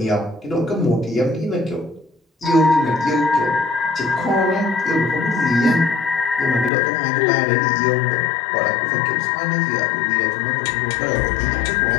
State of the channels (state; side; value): drops out; right; at 6.7 s